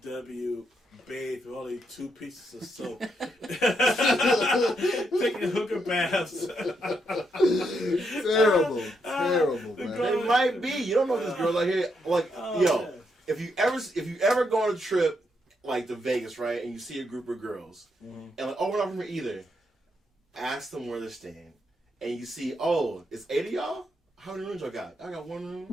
bathe with only 2 pieces of soap. Taking hooker baths. Terrible, man. It might be. You don't know if this girl's out here. Like, Yeah. if you ever go on a trip like to Vegas, right, and you see a group of girls, and like, oh, we're not from here either. Ask them where they're staying, and you see, oh, it's 8 of y'all. How many rooms y'all got? I got 1 room.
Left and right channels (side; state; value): both; normal; correlation 0.79